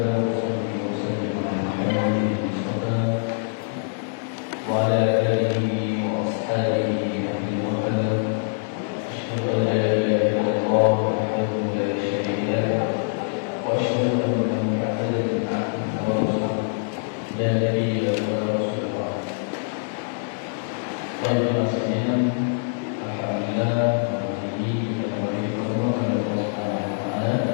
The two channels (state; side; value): silent; right; digital silence